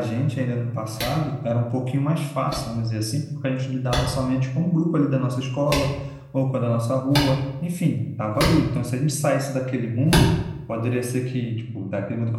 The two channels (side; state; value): both; identical; correlation 1.00